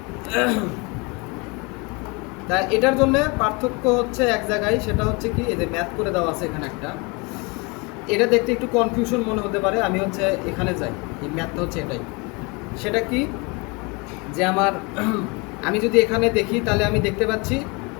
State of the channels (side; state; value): right; quieter; 28.6 dB